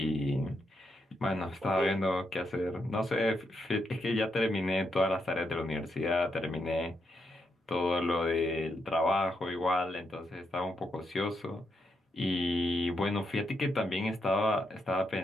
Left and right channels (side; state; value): both; normal; correlation 0.81